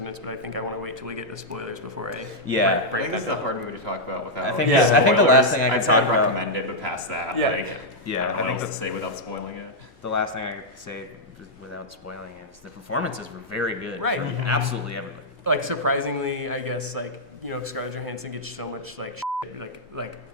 but I think I want to wait till we get to spoilers before I Yeah, I break think that this is a down. hard movie to talk about without. I think Yeah. I think the last thing I I'd could say talk I'd about. recommend it, but past that, Yeah. like, Yeah, I I don't know think what else to say without spoiling it. the last thing I could say without spoiling it is the performances were very good. Right. From absolutely everybody. Like surprisingly, I guess like Scarlett Johansson gets so much like shit, like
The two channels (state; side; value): normal; both; correlation -0.06